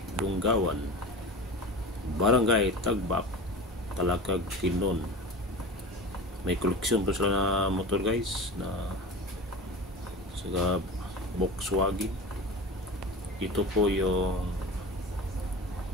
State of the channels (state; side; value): normal; both; correlation 0.31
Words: Lunggawan, Barangay Tagbak, Talakag, Tinon. May koleksyon pa sila na motor guys na sa Volkswagen. Ito po yung